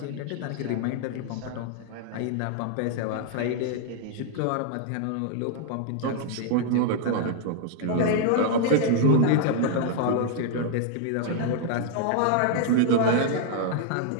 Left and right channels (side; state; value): both; different; correlation 0.00